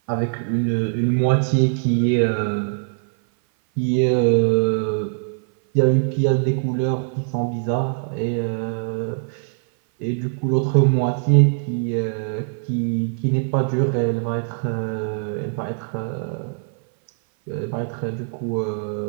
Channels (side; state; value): left; silent; 58 dB below the other